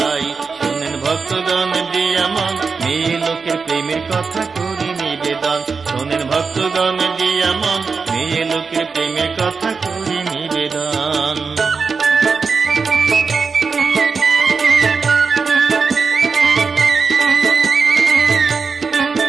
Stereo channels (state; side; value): quieter; left; 5.0 dB